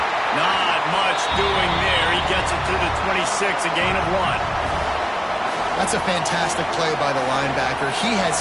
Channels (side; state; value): both; identical; correlation 1.00